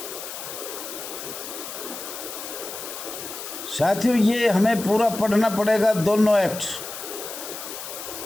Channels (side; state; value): left; noise; hiss, 9 dB below the sound